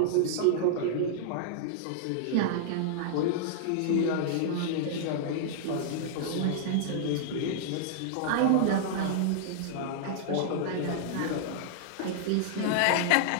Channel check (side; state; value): both; different; correlation -0.01